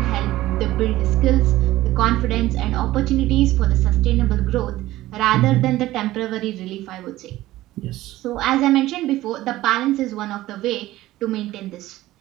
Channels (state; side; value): quieter; left; 16.2 dB